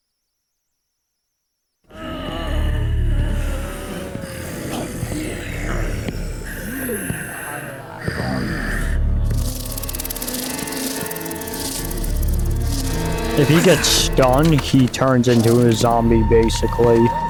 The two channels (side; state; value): both; identical; correlation 1.00